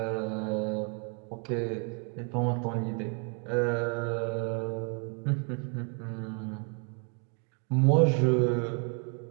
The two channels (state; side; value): quieter; left; 38.4 dB